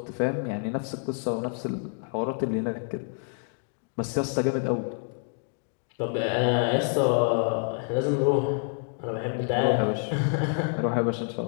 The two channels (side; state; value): right; silent; 58 dB below the other